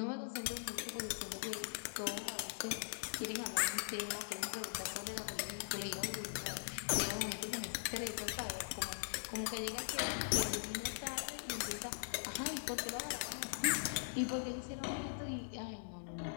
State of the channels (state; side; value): silent; right; digital silence